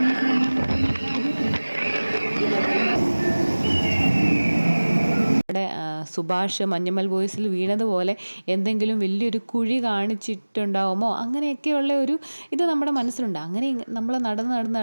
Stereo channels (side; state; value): both; inverted; correlation -1.00